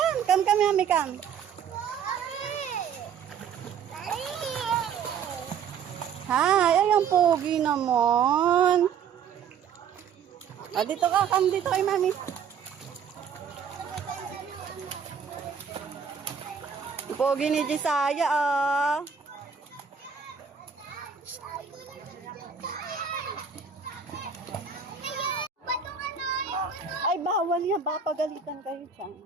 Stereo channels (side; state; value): left; quieter; 7.1 dB